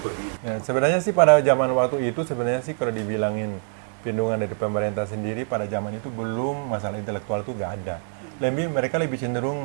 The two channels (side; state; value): left; silent; 62 dB below the other